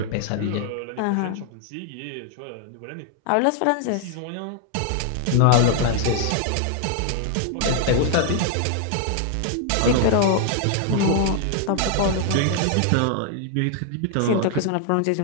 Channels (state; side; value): different; both; correlation 0.00